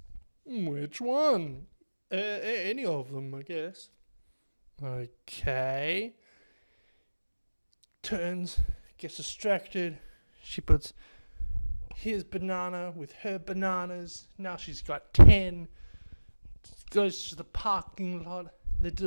"Which one?" Any of them, I guess." "Okay." Turns, gets distracted. She puts his banana with her bananas. Now she's got 10. Goes to the parking lot. They do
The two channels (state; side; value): inverted; both; correlation -1.00